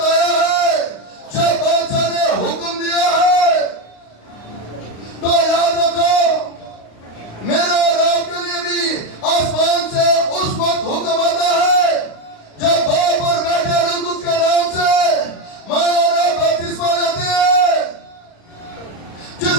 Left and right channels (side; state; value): right; late; 35 ms